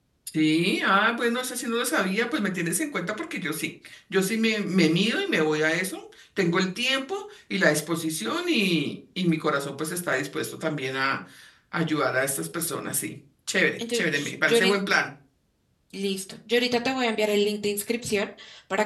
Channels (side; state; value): both; identical; correlation 1.00